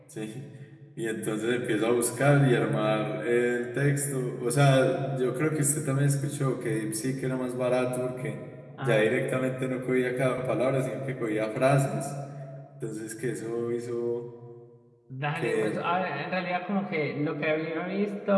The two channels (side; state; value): both; identical; correlation 1.00